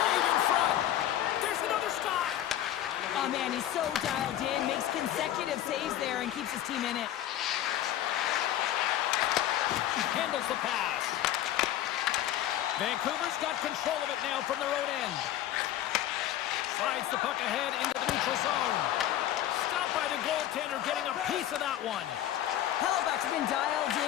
in front. There's another stop. Oh, man, he's so dialed in, makes consecutive saves there, and keeps his team in it. Handles the pass. Vancouver's got control of it now from their own end. Slides the puck ahead into the neutral zone. Stopped by the goaltender, getting a piece of that one. Hellebuck's been dialed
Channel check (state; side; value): quieter; right; 12.4 dB